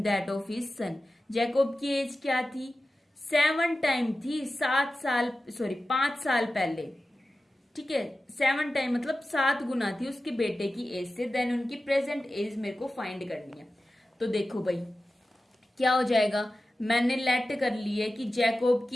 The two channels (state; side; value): normal; both; correlation 0.94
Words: that of his son, Jacob की एज क्या थी, 7 टाइम थी, 5 साल पहले। ठीक है, 7 टाइम मतलब 7 गुना थी उसके बेटे की एज से। देन उनकी प्रेजेंट एज मेरे को फाइंड करनी है। तो देखो भाई क्या हो जाएगा, मैंने लेट कर ली है कि जैकोब